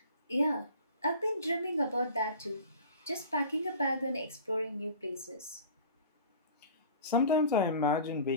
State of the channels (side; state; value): both; inverted; correlation -0.41